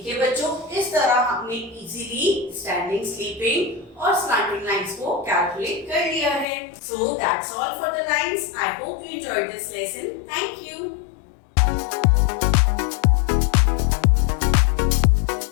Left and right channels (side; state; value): right; drops out; at 6.5 s